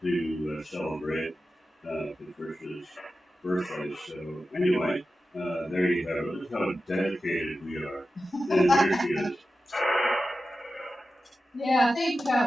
to celebrate Patricia's birthday. So, anyway. There you have it. Look how dedicated we are. And there she is. Yeah, I think,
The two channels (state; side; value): normal; both; correlation 0.93